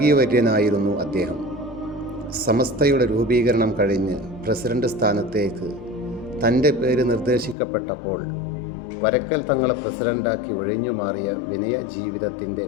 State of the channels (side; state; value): right; drops out; at 7.6 s